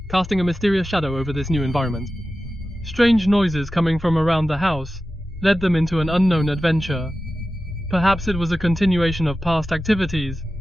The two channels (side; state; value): both; normal; correlation 0.94